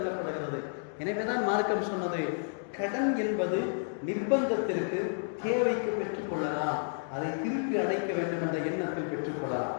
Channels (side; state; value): right; silent; digital silence